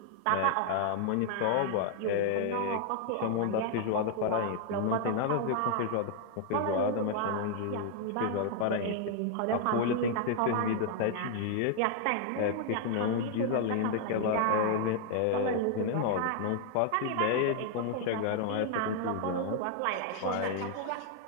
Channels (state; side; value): different; both; correlation 0.00